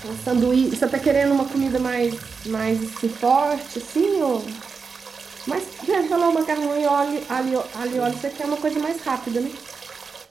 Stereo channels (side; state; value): left; quieter; 5.1 dB